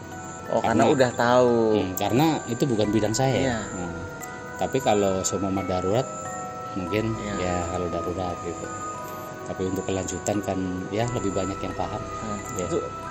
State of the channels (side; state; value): both; identical; correlation 1.00